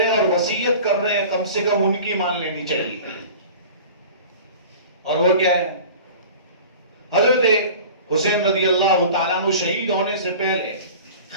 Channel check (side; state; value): both; inverted; correlation -0.40